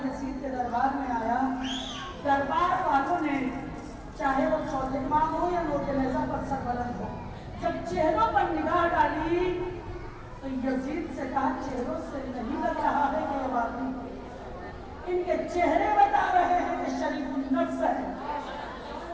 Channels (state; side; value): identical; both; correlation 1.00